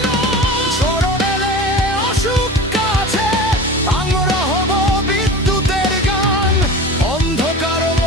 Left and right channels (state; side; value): normal; both; correlation 0.34